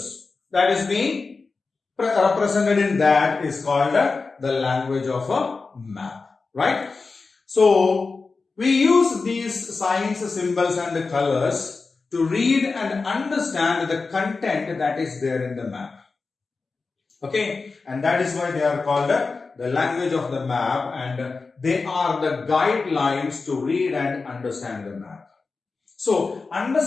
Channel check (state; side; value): quieter; right; 4.2 dB